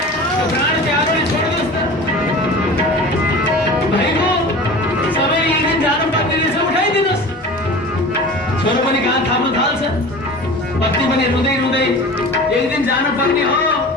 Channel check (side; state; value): both; normal; correlation 0.37